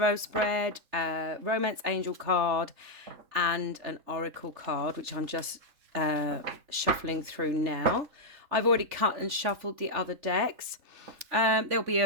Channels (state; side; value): late; left; 3.3 ms